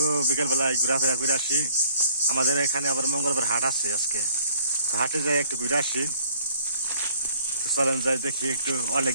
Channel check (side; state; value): both; inverted; correlation -0.60